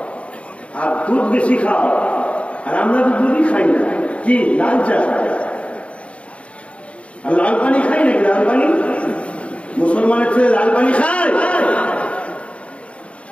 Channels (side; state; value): right; late; 0.062 ms